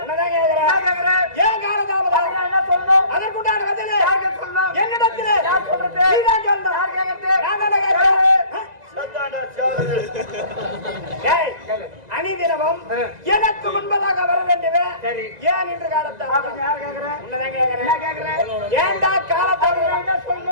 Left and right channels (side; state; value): left; late; 2.0 ms